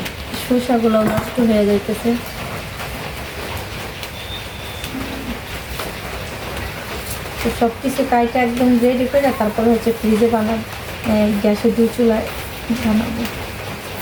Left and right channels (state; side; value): identical; both; correlation 1.00